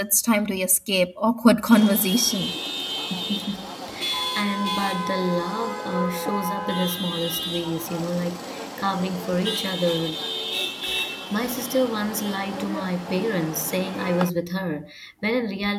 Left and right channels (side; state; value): both; identical; correlation 1.00